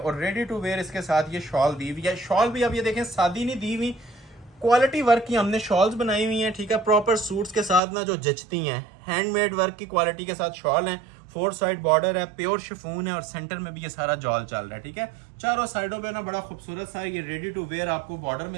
रेडी टू वेयर इसके साथ ये शॉल दी हुई है। शॉल भी अब ये देखें सादी नहीं दी हुई, क्वालिटी वर्क की हमने शॉल्स बनाई हुई हैं, ठीक है, प्रॉपर सूट्स के साथ ना जो जचती हैं, हैंडमेड वर्क की क्वालिटी के साथ शॉल है। 4 साइड बॉर्डर है, प्योर शिफॉन है, और सेंटर में भी ये सारा जॉल चल रहा है, ठीक है। चारों साइडों पे ना बड़ा खूबसूरत सा ये रेडी टू वेयर आपको बॉर्डर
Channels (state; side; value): drops out; left; at 7.8 s